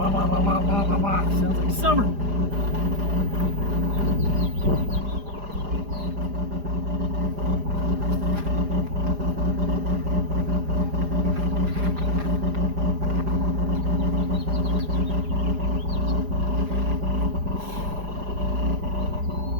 Sounds like summer.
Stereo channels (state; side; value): late; left; 4.9 ms